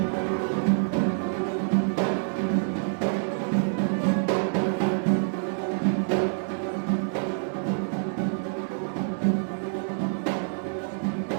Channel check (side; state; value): left; silent; digital silence